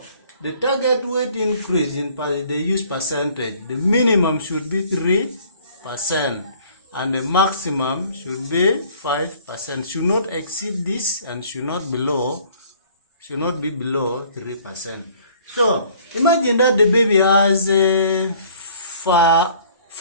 the target weight increase they use percentage. The minimum should be 3%. And the maximum should be 5%. Should not exceed this and should not be below 3%. So imagine that the baby has let's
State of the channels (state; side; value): inverted; both; correlation -0.56